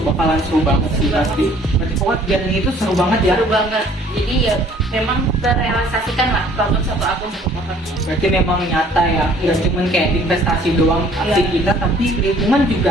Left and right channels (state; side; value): normal; both; correlation 0.56